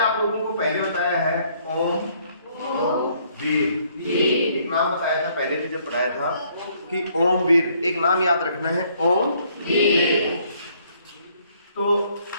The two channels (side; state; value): both; inverted; correlation -0.66